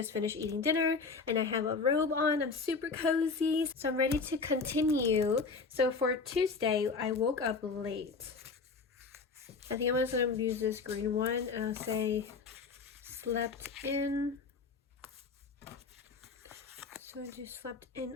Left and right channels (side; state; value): right; quieter; 4.6 dB